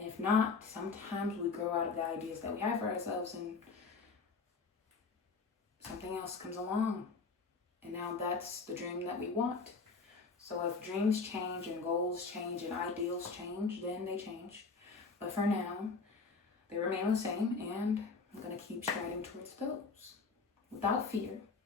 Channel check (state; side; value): quieter; right; 4.5 dB